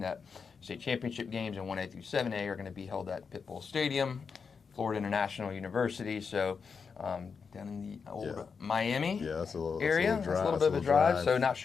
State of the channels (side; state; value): right; quieter; 5.7 dB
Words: state championship games in 1A through 7A are going to be held at Pitbull Stadium, Florida International University. So down in the old Miami area. That's a little bit of a drive. So not